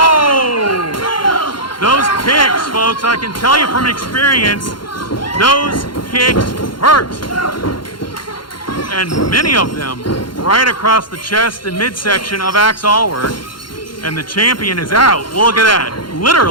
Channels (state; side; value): late; right; 0.72 ms